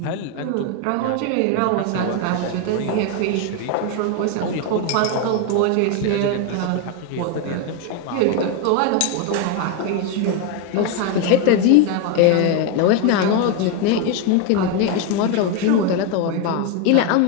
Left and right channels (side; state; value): both; different; correlation 0.02